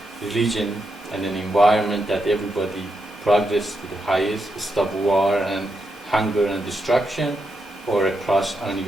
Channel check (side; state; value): both; normal; correlation 0.83